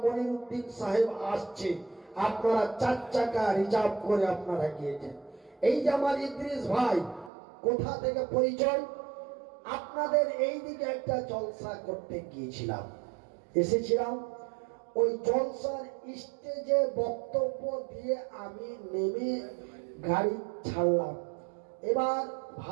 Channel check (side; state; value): left; drops out; at 7.3 s